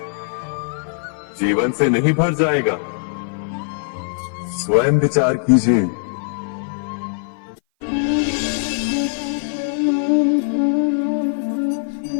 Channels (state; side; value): silent; right; 57 dB below the other